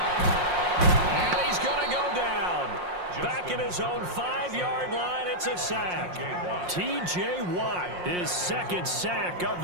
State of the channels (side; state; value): left; late; 5.6 ms